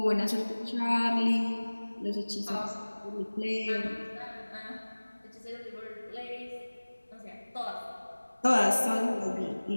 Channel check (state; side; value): inverted; both; correlation -1.00